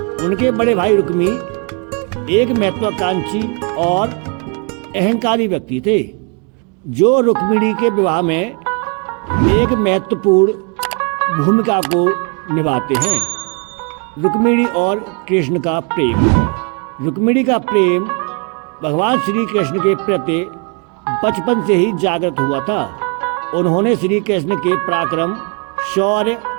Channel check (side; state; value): left; quieter; 35.3 dB